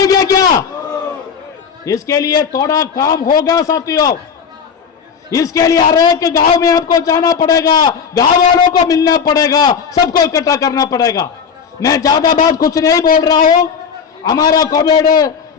क्या? इसके लिए थोड़ा काम होगा साथियों। इसके लिए हर एक गांव में आपको जाना पड़ेगा, गांव वालों को मिलना पड़ेगा, सबको इकट्ठा करना पड़ेगा। मैं ज्यादा बात कुछ नहीं बोल रहा हूं। हमारा कॉमरेड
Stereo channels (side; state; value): right; quieter; 6.6 dB